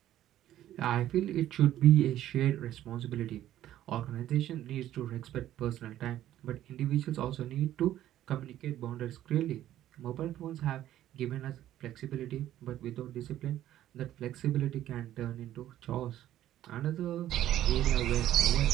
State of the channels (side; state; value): left; quieter; 12.7 dB